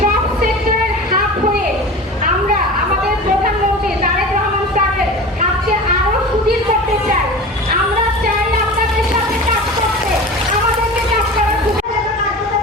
সব সেক্টরের হাব হয়ে আমরা আমাদের প্রধানমন্ত্রী তারেক রহমান স্যারের হাতকে আরো সুদৃঢ় করতে চাই। আমরা চাই আপনাদের সাথে কাজ করতে, আমাদেরকে কাজ করার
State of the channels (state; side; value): normal; both; correlation 0.34